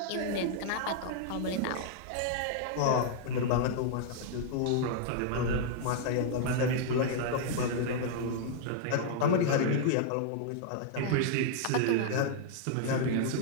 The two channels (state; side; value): different; both; correlation -0.01